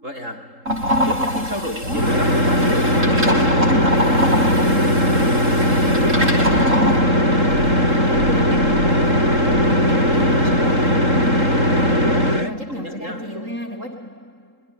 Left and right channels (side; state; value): left; late; 3.7 ms